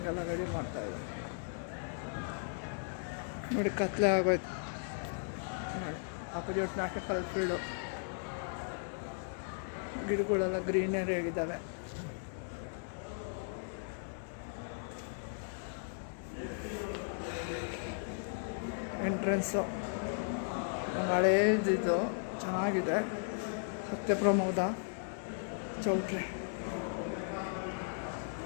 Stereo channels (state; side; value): silent; right; digital silence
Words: ರೆಡಿ ಮಾಡ್ತಾ ಇದ್ದಾರೆ. ನೋಡಿ, ಕತ್ಲೆ ಆಗೋಯ್ತು ನೋಡಿ. ಅಪೋಸಿಟ್ ನಾಟಕ ಕಾಲೇಜ್ ಫೀಲ್ಡು, ಗಿಡಗಳೆಲ್ಲ ಗ್ರೀನರಿ ಆಗಿದ್ದಾವೆ. ಎಂಟ್ರೆನ್ಸು ಒಂದು ಹಳೇದಿದ್ದು ಚೆನ್ನಾಗಿದೆ. ಸತ್ಯಪ್ರಮೋದ ಚೌಟ್ರಿ.